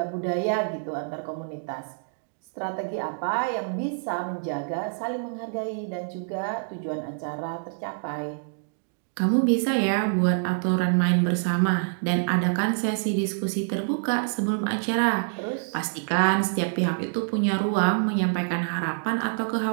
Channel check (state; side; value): silent; left; digital silence